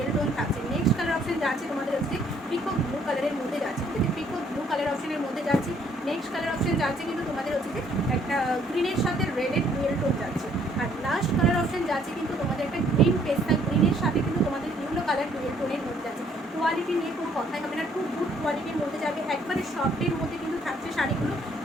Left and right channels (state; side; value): normal; both; correlation 0.64